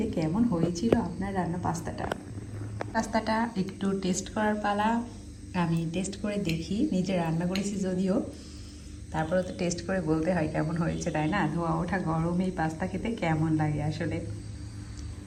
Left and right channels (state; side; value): identical; both; correlation 1.00